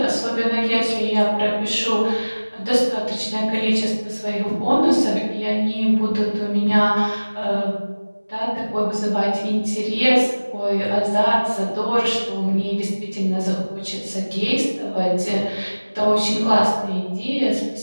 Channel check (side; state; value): both; inverted; correlation -1.00